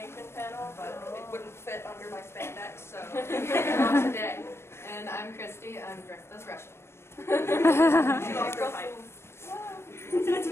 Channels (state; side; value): late; right; 0.12 ms